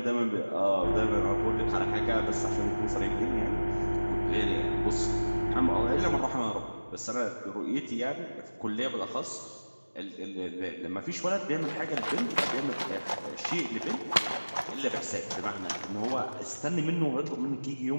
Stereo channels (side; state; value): both; inverted; correlation -1.00